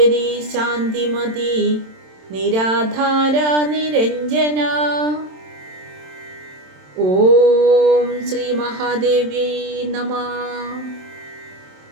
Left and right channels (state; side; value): late; left; 27 ms